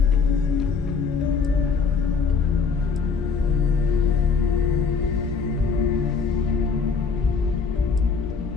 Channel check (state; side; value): quieter; right; 5.3 dB